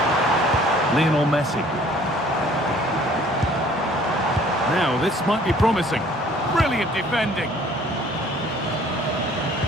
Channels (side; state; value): both; normal; correlation 0.55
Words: Lionel Messi. Now, this might be promising. Brilliant defending.